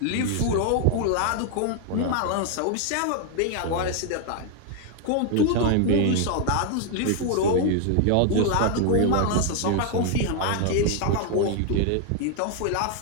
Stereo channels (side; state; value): both; different; correlation 0.00